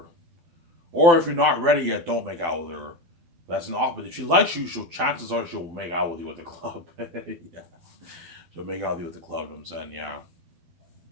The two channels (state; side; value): late; left; 12 ms